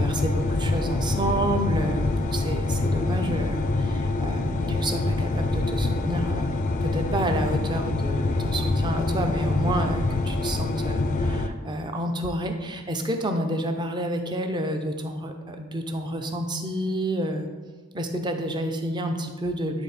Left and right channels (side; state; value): both; normal; correlation 0.69